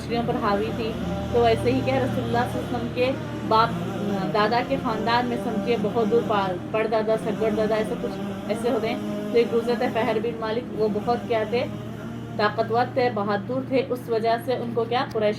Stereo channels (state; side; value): identical; both; correlation 1.00